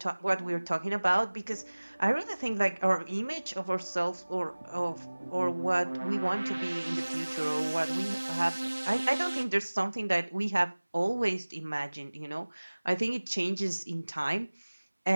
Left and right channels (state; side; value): inverted; both; correlation -1.00